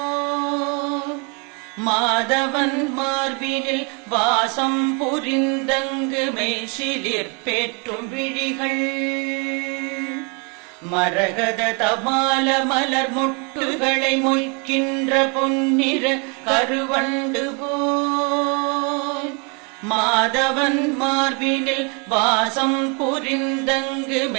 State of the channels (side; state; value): left; quieter; 34.0 dB